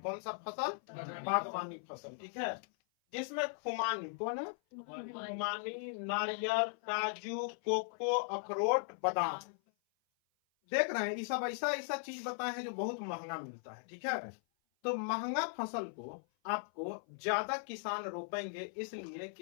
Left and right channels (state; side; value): silent; right; 52 dB below the other